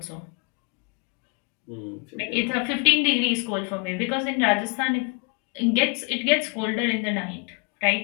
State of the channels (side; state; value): right; quieter; 33.6 dB